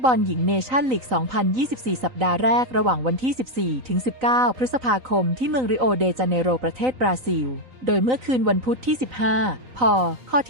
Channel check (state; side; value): late; left; 3.9 ms